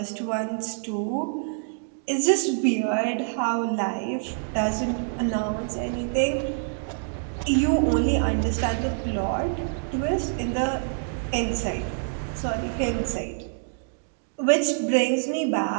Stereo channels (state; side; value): silent; left; digital silence